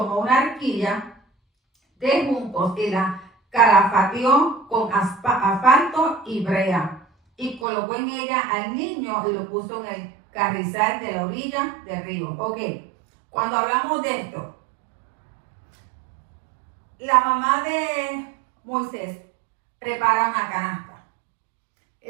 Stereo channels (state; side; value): drops out; left; at 7.7 s